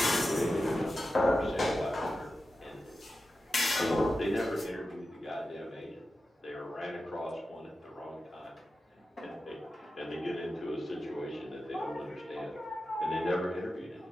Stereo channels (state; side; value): normal; both; correlation 0.92